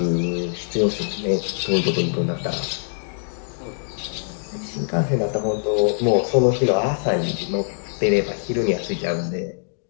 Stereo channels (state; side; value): silent; right; digital silence